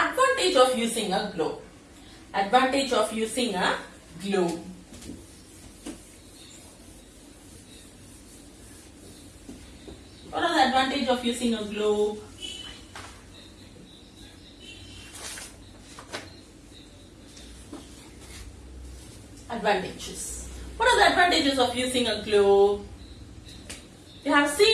of using a globe. Advantage of using a globe. What are the advantage of using a globe? Advantages. What are the advantages of using a globe? You have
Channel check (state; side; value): identical; both; correlation 1.00